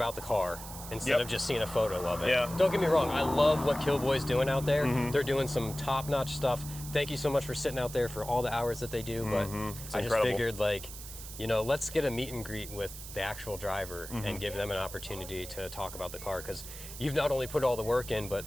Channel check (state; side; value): noise; right; hiss, 12 dB below the sound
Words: the car instead Yep. of just seeing a photo of it. Yeah. Don't get me wrong, I love what Killboy's doing out there. They're doing some top-notch stuff. Thank you so much for sitting out there for all the hours that they do, but It's I just incredible. figured like, let's get a meet and greet with the actual driver and give them an opportunity to talk about the car because you've not only put all the work in,